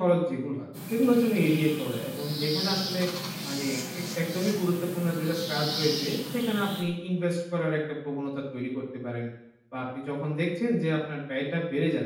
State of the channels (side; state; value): both; identical; correlation 1.00